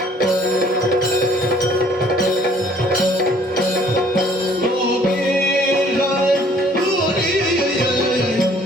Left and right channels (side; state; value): both; normal; correlation 0.58